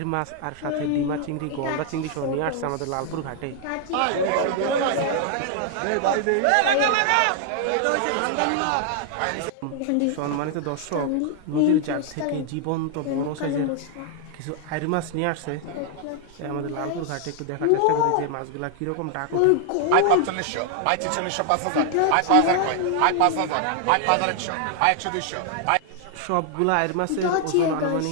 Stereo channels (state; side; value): different; both; correlation 0.00